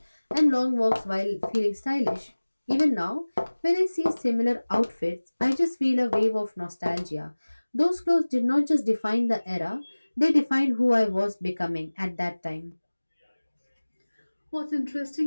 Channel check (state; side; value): inverted; both; correlation -1.00